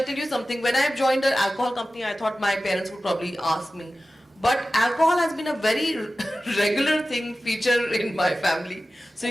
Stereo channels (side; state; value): both; normal; correlation 0.95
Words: tell you something. When I joined an alcohol company, I thought my parents would probably ask me. But alcohol has been a very regular feature in my family. So